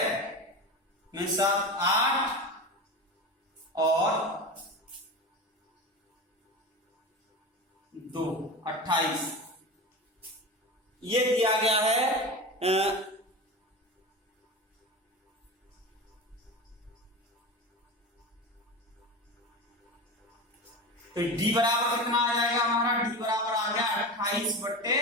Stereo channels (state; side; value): normal; both; correlation 0.26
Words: में 7 8 और 2 28। ये दिया गया है तो डी बराबर कितना आ जाएगा हमारा? डी बराबर आ गया